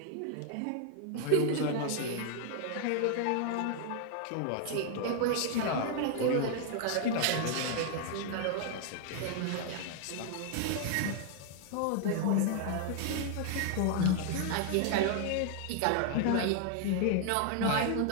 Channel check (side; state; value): both; different; correlation 0.00